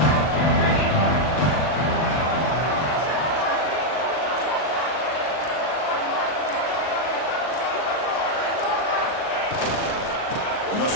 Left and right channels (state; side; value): late; right; 39 ms